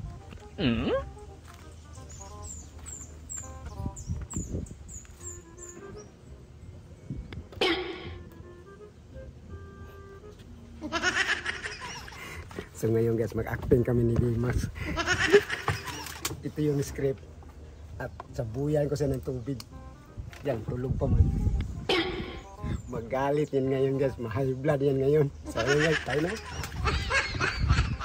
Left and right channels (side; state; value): both; identical; correlation 1.00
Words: So ngayon guys, mag-acting kami ni Dimas. Ito yung script. At sabuyan ko siya ng tubig. Yan, tulog pa man. Magalit yan ngayon guys, ma-high blood yan ngayon. So yun guys, tayo na.